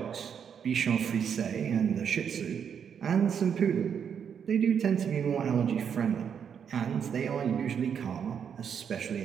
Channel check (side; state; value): left; quieter; 7.6 dB